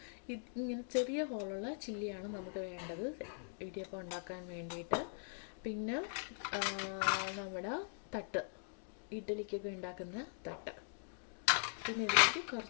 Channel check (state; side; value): silent; right; digital silence